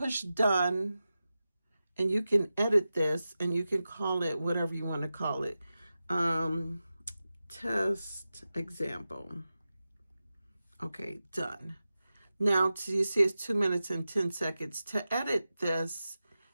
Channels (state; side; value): inverted; both; correlation -0.93